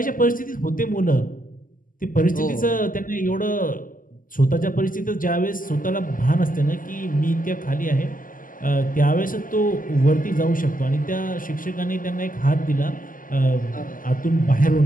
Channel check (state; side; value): late; right; 0.40 ms